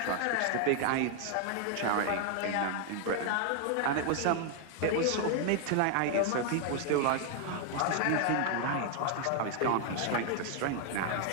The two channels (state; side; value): different; both; correlation 0.00